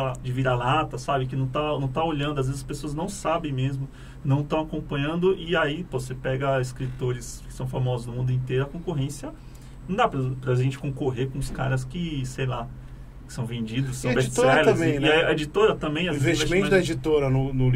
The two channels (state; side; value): identical; both; correlation 1.00